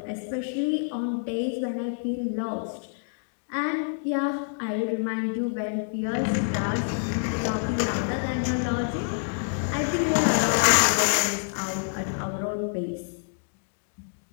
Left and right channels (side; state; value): right; silent; digital silence